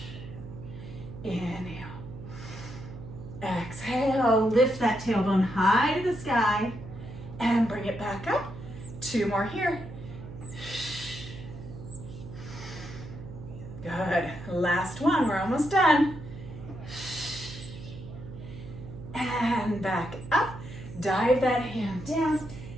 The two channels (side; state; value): right; noise; hum, 12 dB below the sound